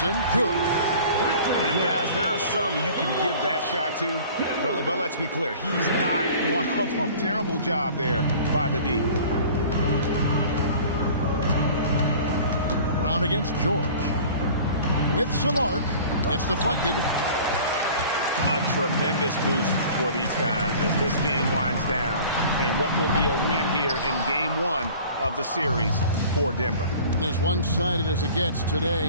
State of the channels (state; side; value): inverted; both; correlation -0.45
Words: good. And guys, there are some you can give that shot to, but let's be clear, he's not one of them. Terrible job there by the D. Brown against George. With some arc, it's deflected. A tremendous boost for these guys as this game winds down and what will be a win here in game 1 of the series for Denver. As one-sided as it gets